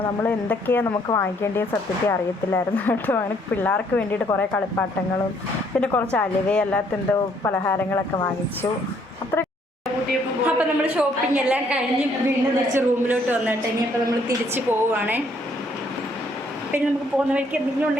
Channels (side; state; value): both; normal; correlation 0.66